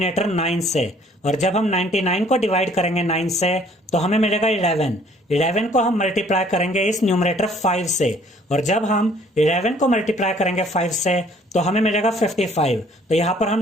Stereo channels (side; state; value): both; normal; correlation 0.58